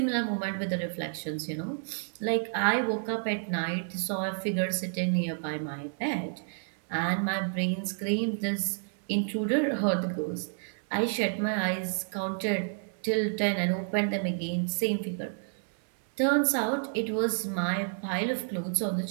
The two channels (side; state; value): left; silent; digital silence